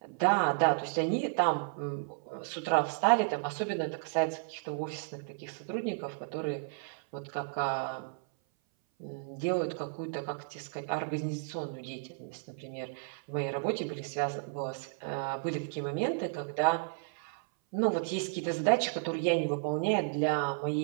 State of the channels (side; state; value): left; silent; 56 dB below the other